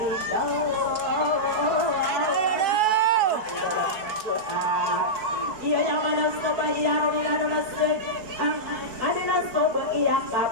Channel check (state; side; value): late; left; 4.7 ms